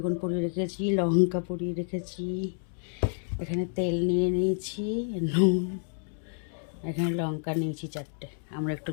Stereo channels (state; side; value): silent; right; 58 dB below the other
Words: পুড়িয়ে রেখেছি, লঙ্কা পুড়িয়ে রেখেছি। এখানে তেল নিয়ে নিয়েছি, নুন, এখানে লঙ্কা নিয়েছি 4টে। আমরা একটু